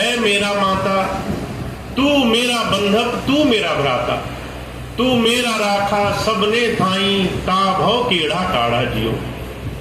मेरा माता, तू मेरा बंधक, तू मेरा भ्राता, तू मेरा राखा सबने थाई, ता भव केड़ा काढ़ा जियो।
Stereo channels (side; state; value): both; identical; correlation 1.00